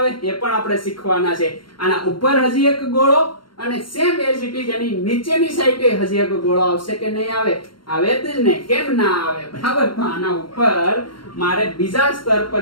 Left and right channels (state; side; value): late; right; 0.73 ms